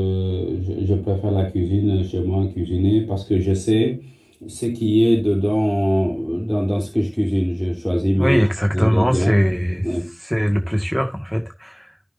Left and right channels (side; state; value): both; identical; correlation 1.00